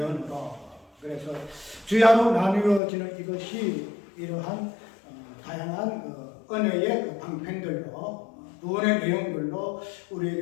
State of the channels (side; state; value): right; drops out; at 2.8 s